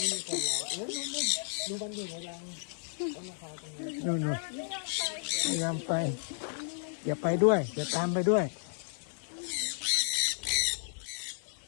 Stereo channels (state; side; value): silent; right; 56 dB below the other